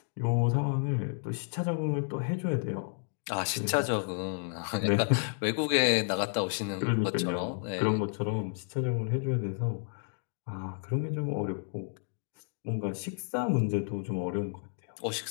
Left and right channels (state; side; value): silent; right; 57 dB below the other